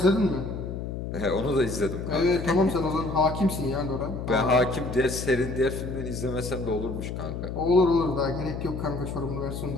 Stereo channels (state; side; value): noise; left; hum, 6 dB below the sound